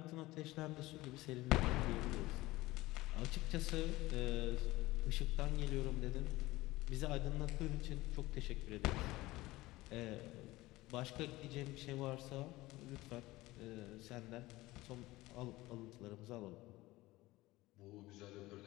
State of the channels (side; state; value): right; quieter; 19.0 dB